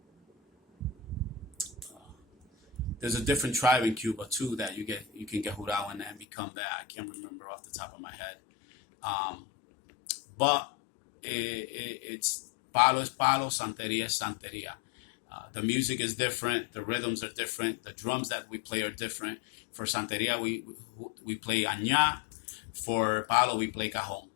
There's a different tribe in Cuba too that you can get jurado in and become that. I can't remember off the top of my head. But it's Palo es Palo, Santeria es Santeria. The music is different. The rhythms are different. The drums that we play are different. For Santeria, we play añá. For Palo, we play cajon.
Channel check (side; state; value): right; drops out; at 6.2 s